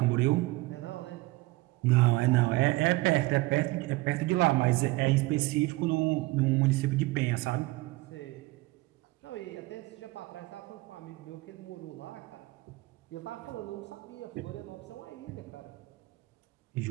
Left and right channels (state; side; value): quieter; left; 21.0 dB